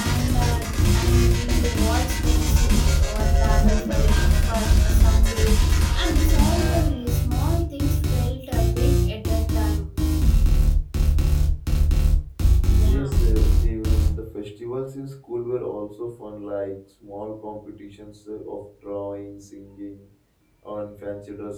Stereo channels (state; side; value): identical; both; correlation 1.00